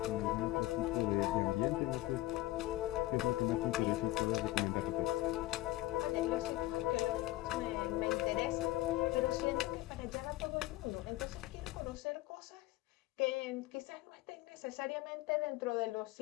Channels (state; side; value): quieter; right; 17.3 dB